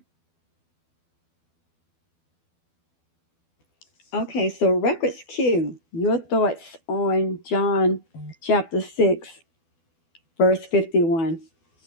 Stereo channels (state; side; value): late; right; 12 ms